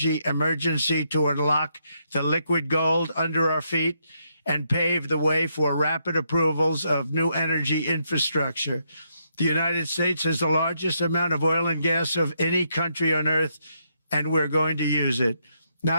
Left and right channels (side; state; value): both; inverted; correlation -0.77